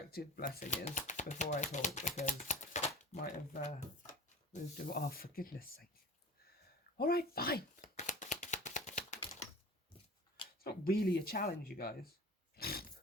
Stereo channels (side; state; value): both; normal; correlation 0.37